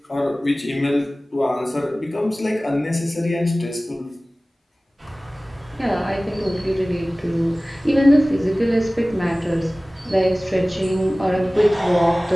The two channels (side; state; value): both; normal; correlation 0.98